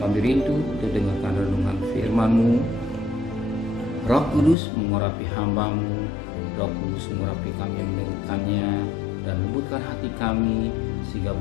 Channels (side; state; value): right; drops out; at 4.5 s